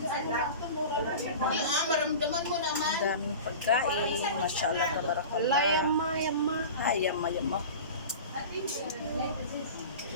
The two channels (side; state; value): both; inverted; correlation -0.34